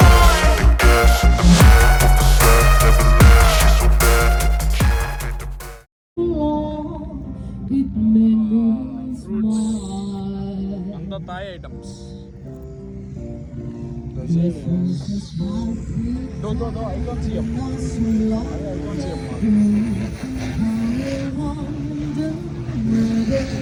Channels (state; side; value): identical; both; correlation 1.00